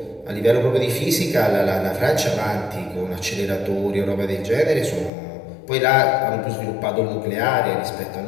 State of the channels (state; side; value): drops out; right; at 5.1 s